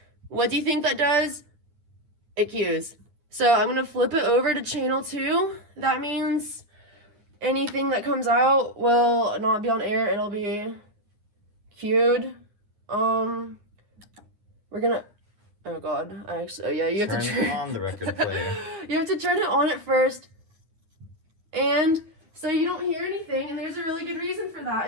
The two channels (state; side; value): late; left; 9.7 ms